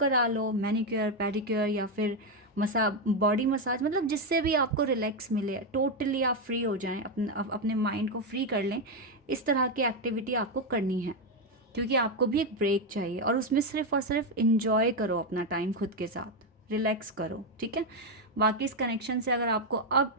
लो, मैनिक्योर, पेडिक्योर, या फिर बॉडी मसाज, मतलब जिससे भी आपको रिलैक्स मिले, टोटली आप फ्री हो जाएं, अपने माइंड को फ्री कर लें। इस तरह की एक्टिविटी आपको करनी है, क्योंकि आपको भी एक ब्रेक चाहिए, और उसमें सिर्फ और सिर्फ इंजॉय करो अपना टाइम खुद के साथ, रिलैक्स करो, ठीक है। बाकी इस कनेक्शन से अगर आपको अब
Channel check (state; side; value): normal; both; correlation 0.06